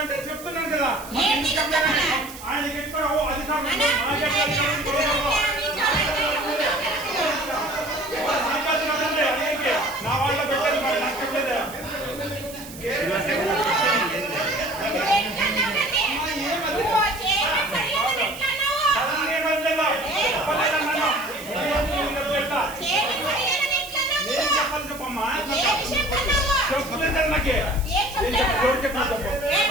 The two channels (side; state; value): right; noise; hiss, 15 dB below the sound